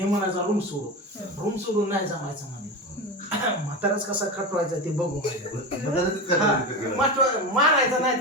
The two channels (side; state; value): both; normal; correlation 0.22